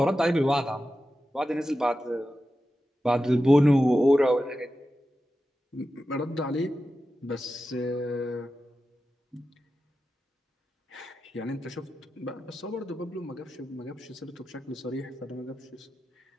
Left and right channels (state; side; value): normal; both; correlation 0.92